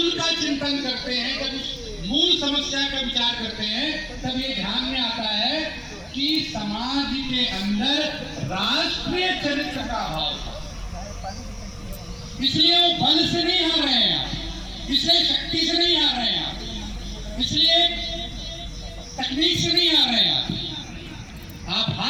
का चिंतन करते हैं, जब उस मूल समस्या का विचार करते हैं, तब ये ध्यान में आता है कि समाज के अंदर राष्ट्रीय चरित्र का अभाव था। इसलिए वो बल से नहीं हार रहे हैं, इसलिए शक्ति से नहीं हार रहे हैं, इसलिए तकनीक से नहीं हार रहे हैं। आप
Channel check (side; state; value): both; identical; correlation 1.00